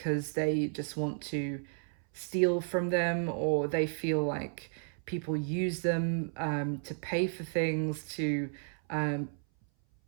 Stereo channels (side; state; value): left; silent; 56 dB below the other